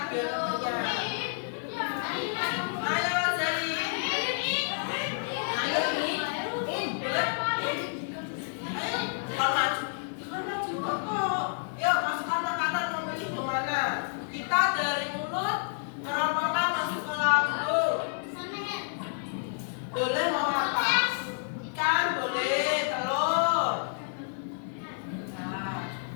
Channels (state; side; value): silent; right; 58 dB below the other